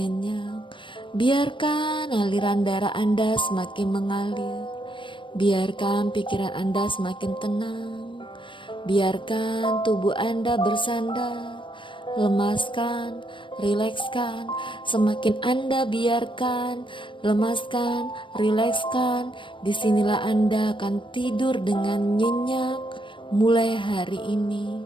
Biarkan aliran darah Anda semakin mengalir. Biarkan pikiran Anda semakin tenang. Biarkan tubuh Anda bersandar. Lemaskan, rilekskan. Semakin Anda biarkan, lemaskan, rilekskan, disinilah Anda akan tidur dengan nyenyak. Mulai hari ini,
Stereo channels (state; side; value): late; right; 0.24 ms